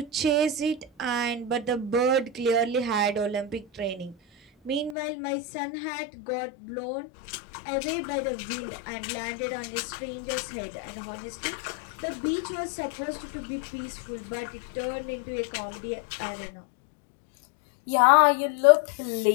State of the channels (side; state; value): right; drops out; at 5.0 s